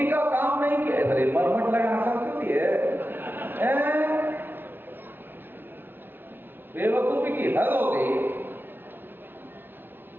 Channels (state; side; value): late; left; 0.099 ms